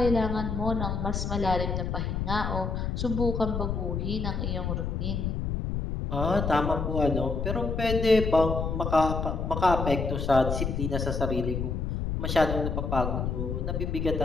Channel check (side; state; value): left; noise; rumble, 2 dB below the sound